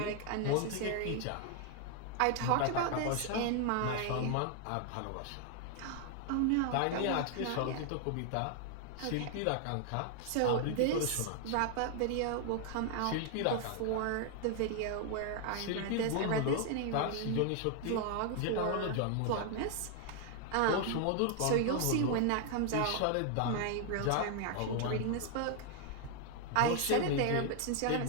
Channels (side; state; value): both; different; correlation 0.00